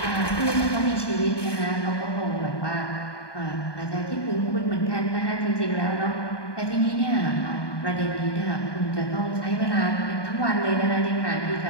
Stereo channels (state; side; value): late; right; 1.2 ms